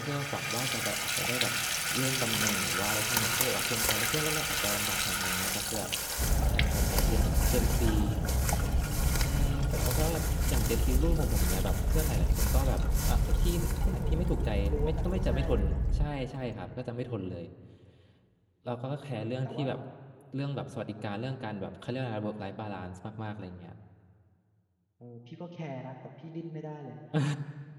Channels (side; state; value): both; identical; correlation 1.00